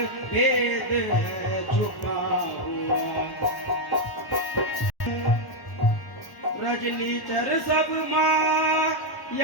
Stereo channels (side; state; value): right; late; 1.1 ms